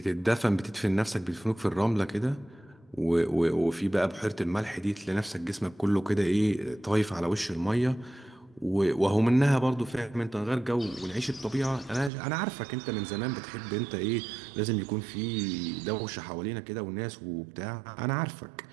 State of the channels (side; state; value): left; drops out; at 12.1 s